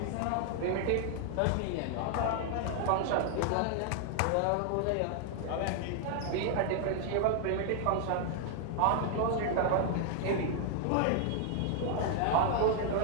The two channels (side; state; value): both; different; correlation 0.00